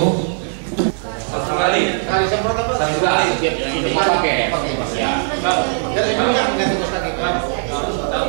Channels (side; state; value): left; silent; digital silence